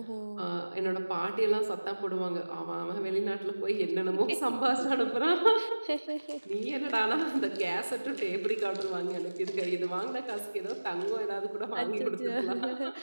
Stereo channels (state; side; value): inverted; both; correlation -1.00